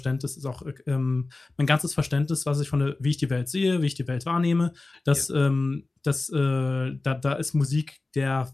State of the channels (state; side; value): quieter; right; 3.3 dB